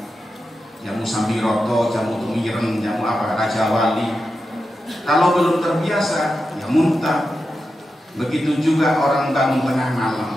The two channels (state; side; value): normal; both; correlation 0.90